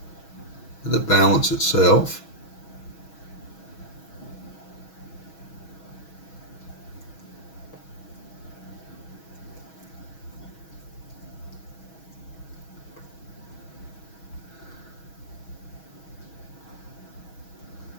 the balance itself.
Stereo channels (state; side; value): late; right; 6.2 ms